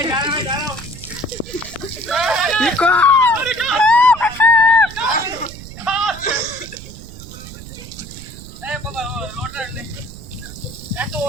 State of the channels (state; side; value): noise; right; rumble, 14 dB below the sound